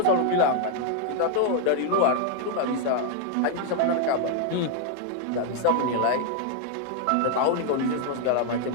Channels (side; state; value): both; different; correlation 0.00